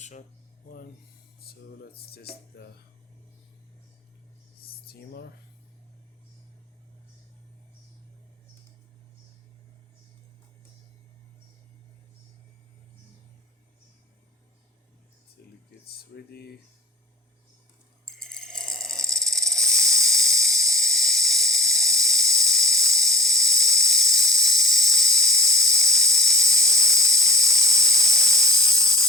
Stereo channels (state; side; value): normal; both; correlation 0.44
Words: one. So let's test the steamer. Till it gets ready.